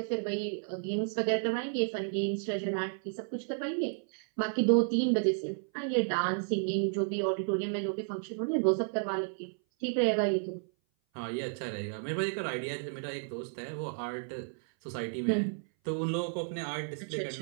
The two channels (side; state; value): left; silent; 56 dB below the other